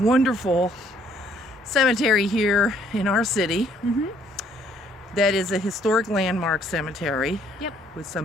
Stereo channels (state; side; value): normal; both; correlation 0.64